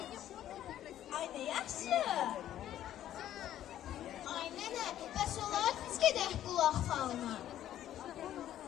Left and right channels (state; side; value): quieter; right; 12.0 dB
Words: Ay nə yaxşı. Ay nənə, bəs olar biz gedək qulaq falına.